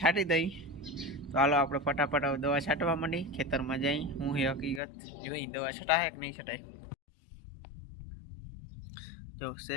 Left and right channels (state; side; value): drops out; right; at 4.8 s